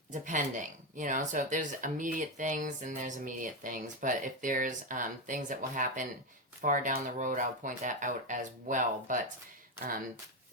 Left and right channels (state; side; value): normal; both; correlation 0.10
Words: depending, so if there's immediate things, then there's immediate things, but if there's things that will happen far down the road, I'll point that out as well. But